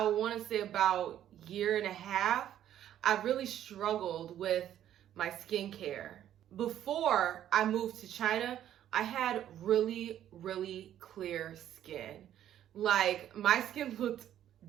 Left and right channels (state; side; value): quieter; left; 11.2 dB